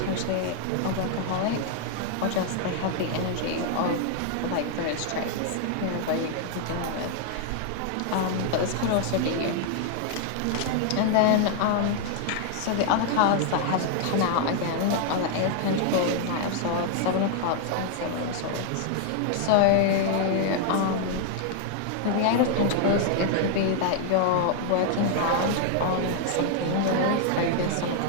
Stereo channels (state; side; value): different; both; correlation 0.00